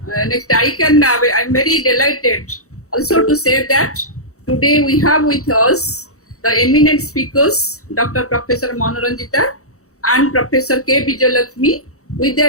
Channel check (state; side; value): late; right; 0.65 ms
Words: I'm very delighted also to say that today we have with us the eminent speakers, Dr. Professor Manoranjita and Professor K. Vijayalakshmi, with their